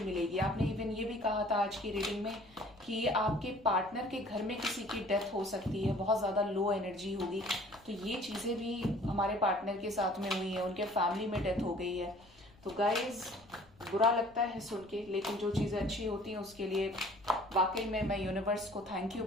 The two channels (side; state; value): left; noise; rumble, 27 dB below the sound